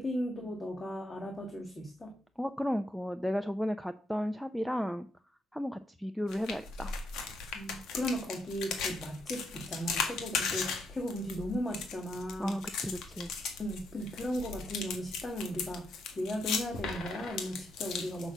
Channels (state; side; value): normal; both; correlation 0.78